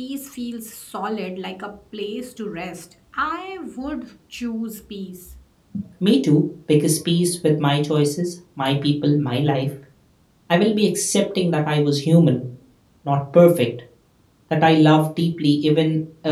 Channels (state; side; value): identical; both; correlation 1.00